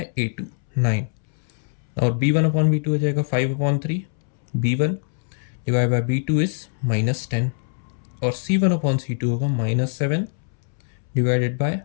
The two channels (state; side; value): silent; right; 63 dB below the other